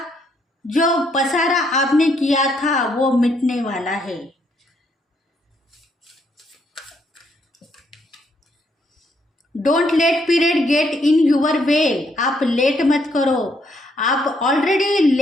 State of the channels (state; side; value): normal; both; correlation 0.72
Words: जो पसारा आपने किया था वो मिटने वाला है। Don't let period get in your way, आप लेट मत करो, आप ऑलरेडी